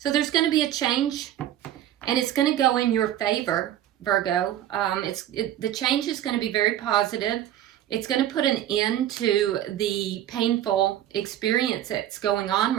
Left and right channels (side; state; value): left; quieter; 12.0 dB